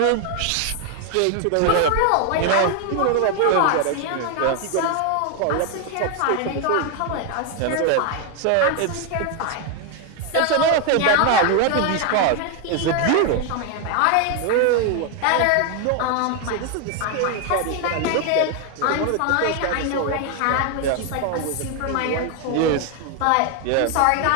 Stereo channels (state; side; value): different; both; correlation 0.01